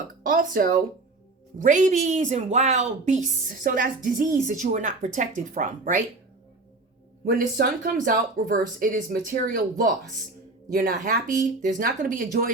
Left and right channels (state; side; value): quieter; left; 3.3 dB